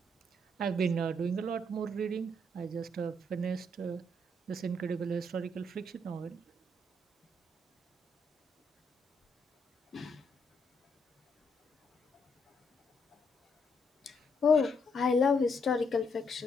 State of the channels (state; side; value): normal; both; correlation 0.74